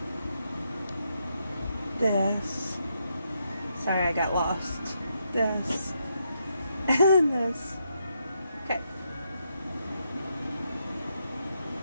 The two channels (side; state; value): both; inverted; correlation -0.80